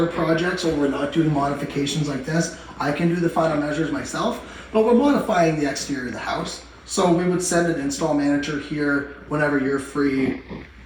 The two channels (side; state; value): both; identical; correlation 1.00